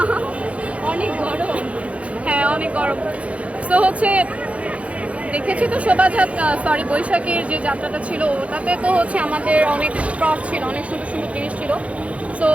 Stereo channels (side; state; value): left; late; 0.064 ms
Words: অনেক গরম, হ্যাঁ অনেক গরম। তো হচ্ছে দেখেছি তো বৈশাখীর যে যাত্রাটা ছিল ওটাতে তো হচ্ছে আমাদের অনেক প্রপ ছিল, অনেক সুন্দর সুন্দর জিনিস ছিল। সো